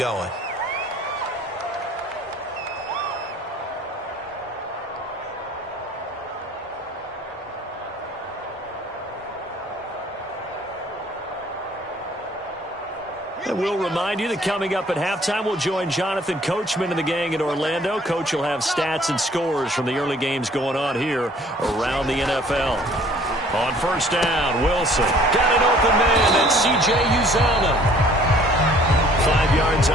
And we'll remind you that coming up at halftime, we'll join Jonathan Coachman and the gang in Orlando. Coach will have stats and scores from the early games going on here around the NFL. On 1st down, Wilson got an open man. That's C.J. Uzomah. 5 yards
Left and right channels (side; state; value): both; normal; correlation 0.55